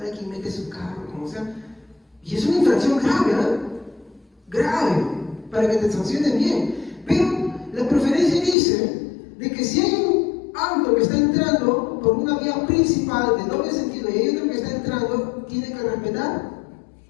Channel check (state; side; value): drops out; right; at 8.6 s